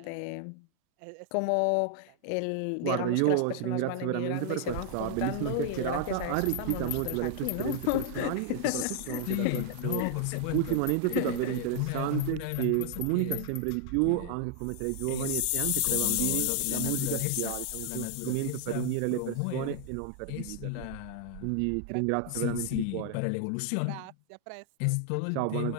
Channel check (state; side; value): different; both; correlation 0.00